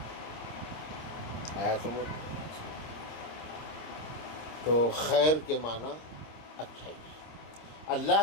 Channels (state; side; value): late; right; 26 ms